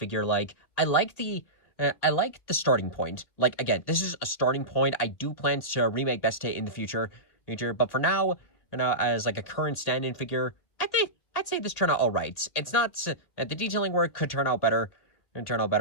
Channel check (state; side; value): late; right; 2.2 ms